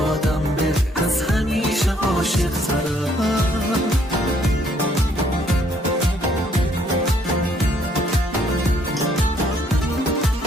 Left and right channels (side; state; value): both; normal; correlation 0.66